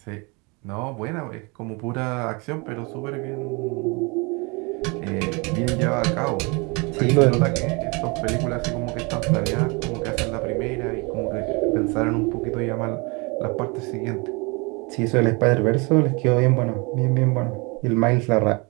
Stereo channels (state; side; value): quieter; left; 29.0 dB